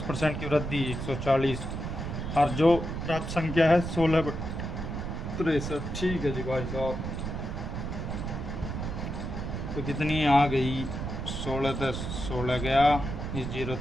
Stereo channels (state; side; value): noise; right; rumble, 5 dB below the sound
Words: की वृद्धि 140, और जो प्राप्त संख्या है 16/63, ठीक है जी भाई साहब। तो कितनी आ गई 16 तो 16 गया, इस 0